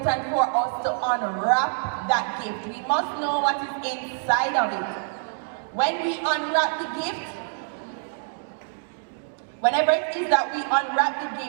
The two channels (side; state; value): left; silent; digital silence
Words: for us to unwrap that gift. We must know what is inside of it. When we unwrap the gift, whenever it is that we unwrap the